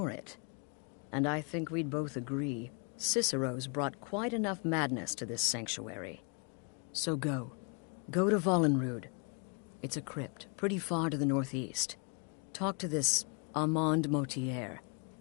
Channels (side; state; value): right; quieter; 36.6 dB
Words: it. And I think we'd both agree, Cicero's brought quite enough madness to this sanctuary. So go. Go to Vollenrud. It's a crypt, pretty far to the northeast. Talk to this Armand Motier,